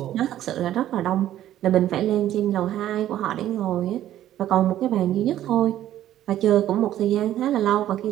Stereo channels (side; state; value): left; quieter; 12.5 dB